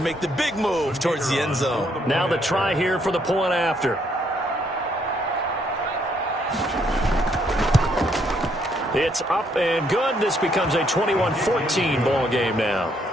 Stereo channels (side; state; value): both; normal; correlation 0.71